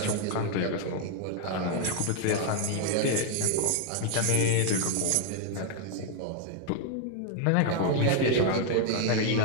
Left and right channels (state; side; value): different; both; correlation 0.00